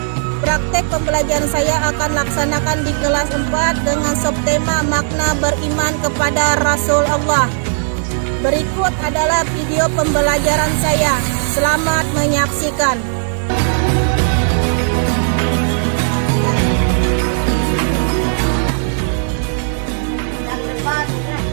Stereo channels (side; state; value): left; silent; digital silence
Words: Praktek pembelajaran saya akan laksanakan di kelas 4 dengan subtema makna beriman kepada Rasul Allah. Berikut adalah video pembelajaran saya. Selamat menyaksikan.